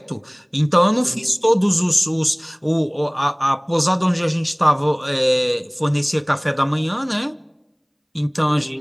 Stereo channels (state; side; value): identical; both; correlation 1.00